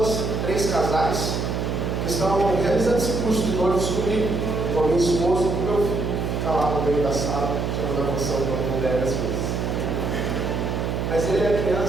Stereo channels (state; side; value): noise; right; hum, 1 dB below the sound